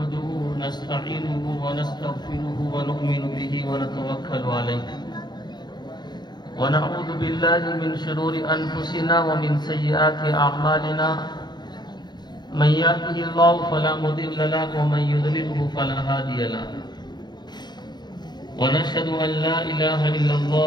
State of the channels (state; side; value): late; right; 0.21 ms